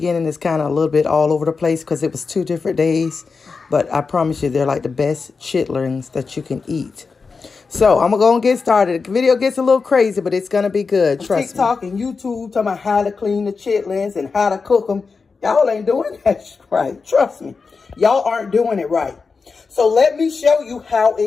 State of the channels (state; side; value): quieter; right; 4.7 dB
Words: is kind of a little bit all over the place because it was 2 different days, but I promise you they're like the best chitlins that you can eat. So I'm going to go and get started. The video gets a little crazy, but it's going to be good, trust me. TikTok and YouTube talking about how to clean the chitlins and how to cook them. Y'all ain't doing that right, trust me. Y'all aren't doing it right. So let me show you how